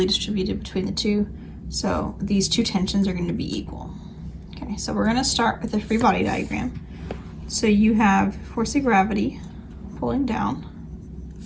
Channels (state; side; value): identical; both; correlation 1.00